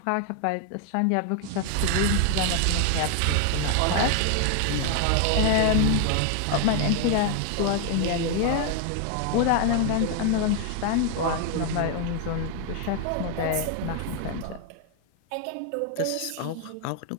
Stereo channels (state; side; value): different; both; correlation 0.00